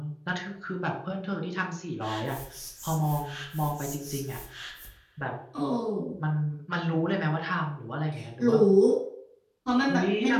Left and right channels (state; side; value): identical; both; correlation 1.00